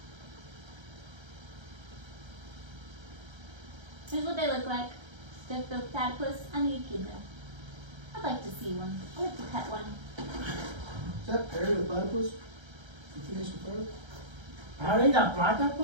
Here's what they look like. The platypus and the echidna. I'd like to see one. I'd like to pet one. Is that Perry the platypus? You finished the first? How they got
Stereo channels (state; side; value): late; left; 1.3 ms